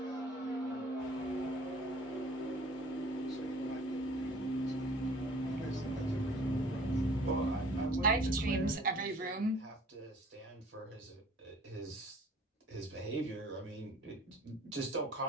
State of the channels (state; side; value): normal; both; correlation 0.51